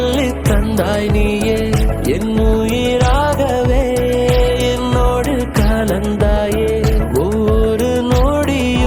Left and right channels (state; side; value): identical; both; correlation 1.00